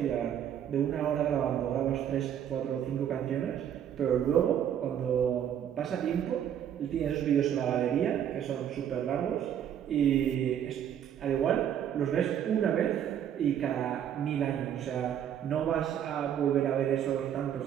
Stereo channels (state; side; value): quieter; left; 9.6 dB